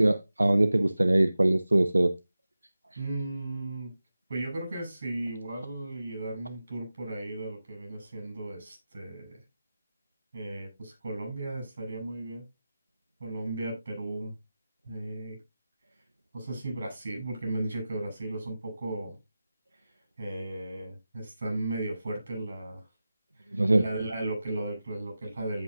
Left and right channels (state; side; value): inverted; both; correlation -0.94